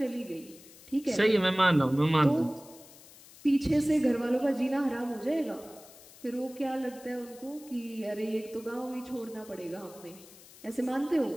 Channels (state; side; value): noise; left; hiss, 21 dB below the sound